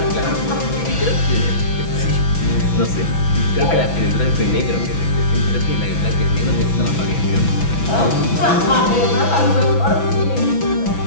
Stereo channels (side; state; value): right; late; 6.0 ms